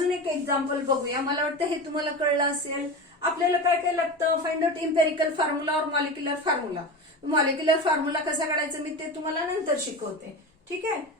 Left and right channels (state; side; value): normal; both; correlation 0.26